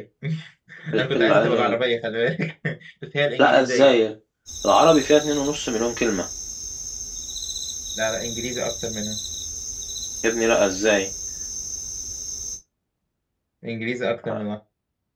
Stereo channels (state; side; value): identical; both; correlation 1.00